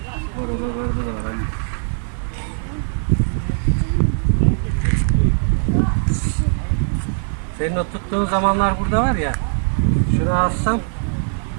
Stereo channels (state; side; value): silent; left; 66 dB below the other